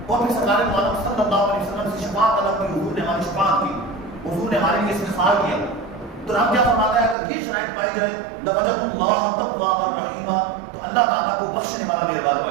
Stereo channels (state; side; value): drops out; left; at 7.2 s